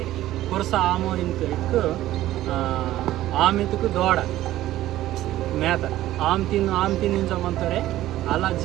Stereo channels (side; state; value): left; quieter; 14.6 dB